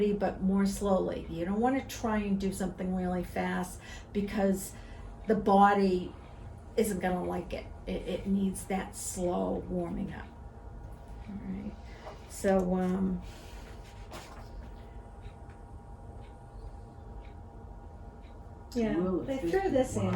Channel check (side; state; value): both; identical; correlation 1.00